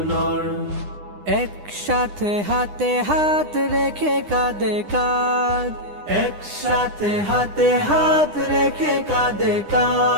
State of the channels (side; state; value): left; late; 9.9 ms